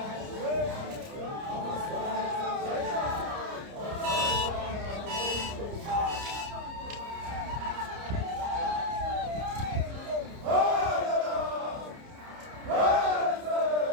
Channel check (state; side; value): late; left; 30 ms